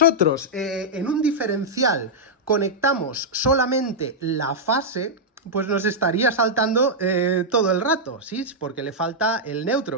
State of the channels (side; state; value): both; normal; correlation -0.06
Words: en un diferencial conectamos solamente la fase, pues nos estaría saltando todo el rato, ¿sí? Porque le falta el